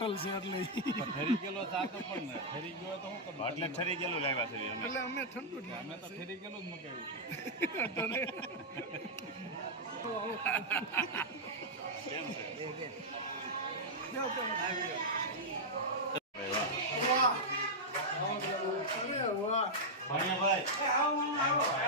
છે એટલે ફરી ગયેલો ચા તો પણ ને ફરી ગયો તો હું કરું? એટલે ઠરી ગયેલું લાવ્યા છે અમે. એટલે અમે ઠંડુ જ અમે તો ફરી ગયેલું જ મગાવ્યું કેમ છે? વાહ. અરે વાહ. ભાણિયાભાઈ,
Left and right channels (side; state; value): both; normal; correlation -0.05